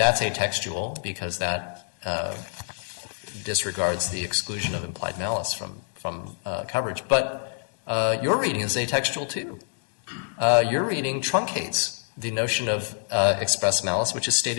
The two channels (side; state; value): right; silent; digital silence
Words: because that disregards the exclusion of implied malice from coverage. But your reading is atextual too. Your reading truncates the notion of express malice, which is